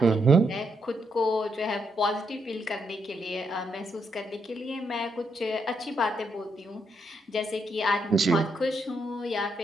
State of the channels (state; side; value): normal; both; correlation 0.78